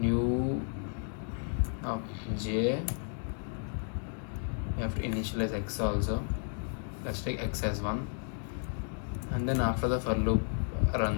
of j. We have to initialize x also. Let's take x as 1, and then after the for loop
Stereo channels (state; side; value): silent; right; 56 dB below the other